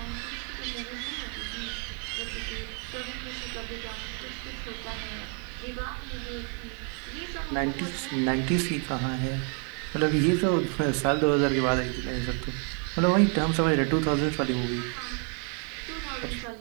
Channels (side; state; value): left; quieter; 39.0 dB